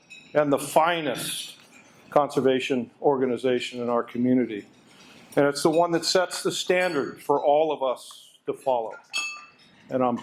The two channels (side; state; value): both; identical; correlation 1.00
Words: and the finest conservation organization in our community, and it's the one that sets the standard for all of us to follow. And I'm